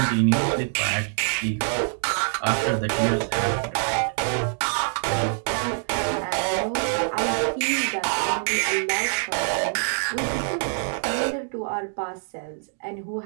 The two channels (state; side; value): silent; left; 62 dB below the other